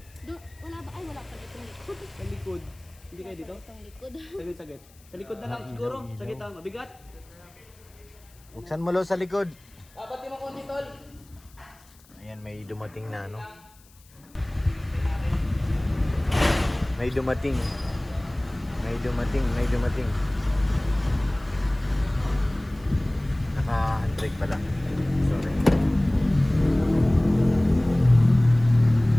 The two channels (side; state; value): left; noise; hiss, 28 dB below the sound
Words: Wala ba? Ay, wala pa itong likod. Sa likod. Hindi kayo dito? Itong likod. Saglit. Sa likod na lang siguro. Sa gitna. Mabigat. Buksan mo lo sa likod. Pati mo konti tol. Ayan, may dumating na ano. May dumating. Naka-handbrake pala. Sorry.